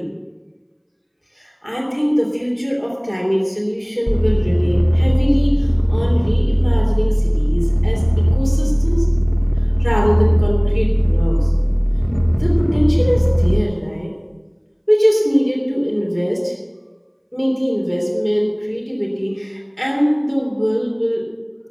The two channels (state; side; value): identical; both; correlation 1.00